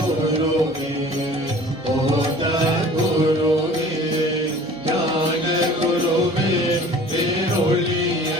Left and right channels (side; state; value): both; normal; correlation 0.46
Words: போத குருவே ஞான குருவே பேரொழிய